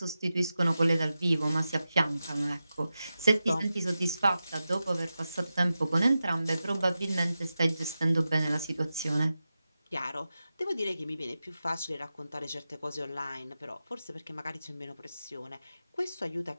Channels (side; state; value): both; inverted; correlation -0.92